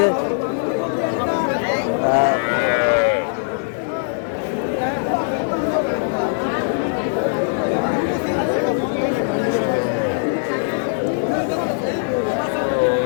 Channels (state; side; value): silent; right; 65 dB below the other